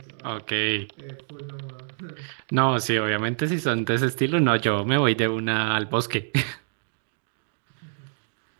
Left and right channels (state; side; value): silent; left; digital silence